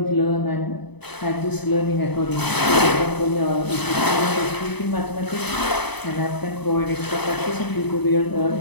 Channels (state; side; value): late; right; 0.99 ms